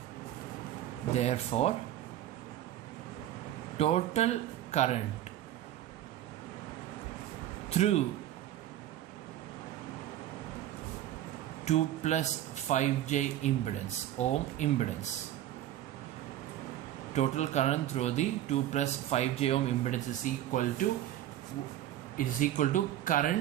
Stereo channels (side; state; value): left; quieter; 12.6 dB